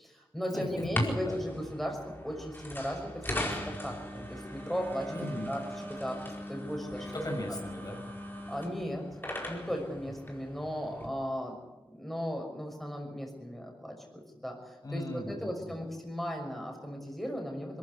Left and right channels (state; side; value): normal; both; correlation 0.86